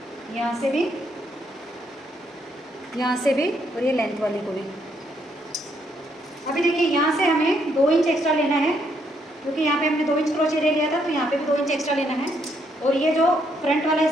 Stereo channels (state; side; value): normal; both; correlation 0.73